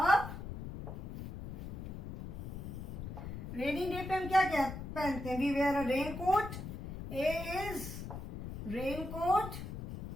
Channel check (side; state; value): left; noise; rumble, 7 dB below the sound